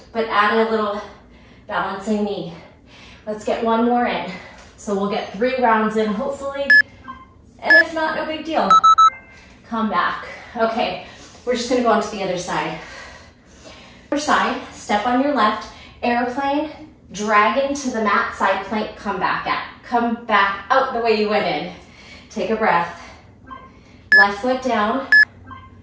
but add a little balancing knee. Let's get one more in. So we'll get 3 rounds in, hopefully, and if not, no big deal. Come back. Okay, we're just gonna go on to the other side. Other side, step on your left, airplane, dragon to the mat, side plank, come back out the way you went in. Take a breath. Left foot down,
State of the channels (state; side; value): identical; both; correlation 1.00